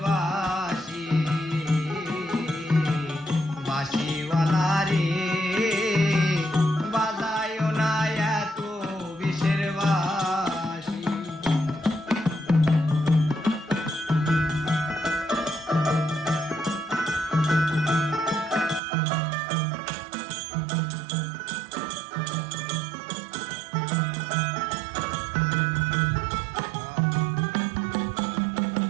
বাঁশি, বাঁশিওয়ালা রে বাজায় না এত বিষের বাঁশি।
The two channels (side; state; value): left; drops out; at 18.8 s